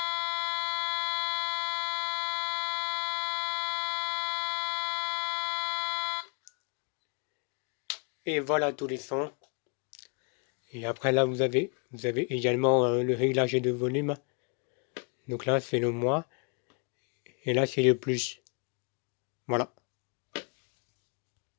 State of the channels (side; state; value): right; quieter; 37.1 dB